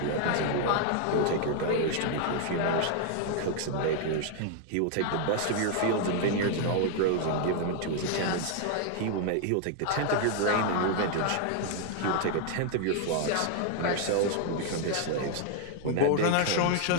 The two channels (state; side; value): different; both; correlation 0.00